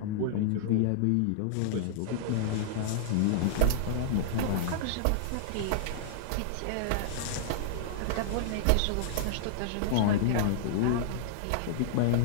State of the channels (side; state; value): both; different; correlation -0.01